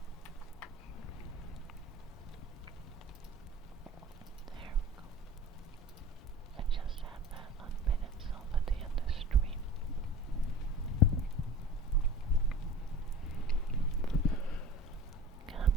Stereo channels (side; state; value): both; normal; correlation 0.39